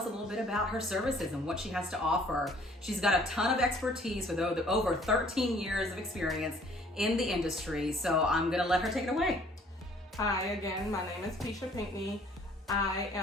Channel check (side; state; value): both; normal; correlation 0.57